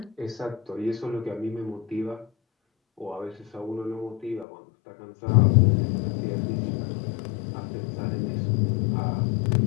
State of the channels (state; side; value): drops out; right; at 4.5 s